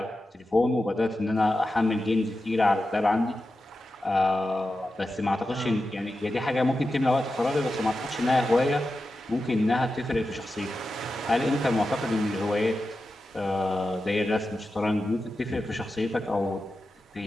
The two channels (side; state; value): both; normal; correlation 0.91